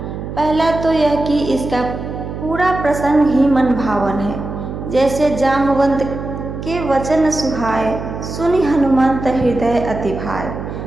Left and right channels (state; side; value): noise; right; hum, 8 dB below the sound